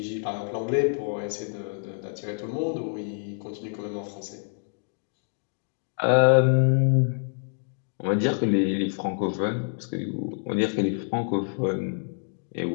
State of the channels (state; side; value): silent; right; digital silence